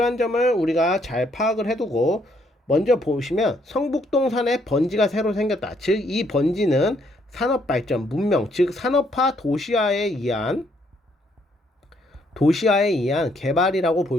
점을 우리가 잘 파악을 해두고 먼저 보시면 성북동산에 번지가 새로 생겼다. 즉 이 번지는 산업발전, 문명, 즉 산업화 도시화에 의한 개발이라고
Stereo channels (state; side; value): normal; both; correlation 0.70